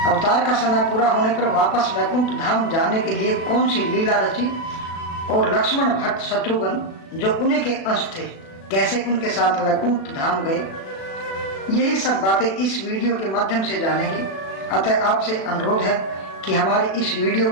अवतार का समय पूरा होने पर वापस वैकुंठ धाम जाने के लिए कौन सी लीला रची और लक्ष्मण भट्ट शत्रुघ्न जो उन्हीं के अंश थे कैसे उनके साथ वैकुंठ धाम गए, यही सब बातें इस वीडियो के माध्यम से जानेंगे। अतः आपसे अनुरोध है कि हमारी इस वीडियो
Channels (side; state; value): right; late; 36 ms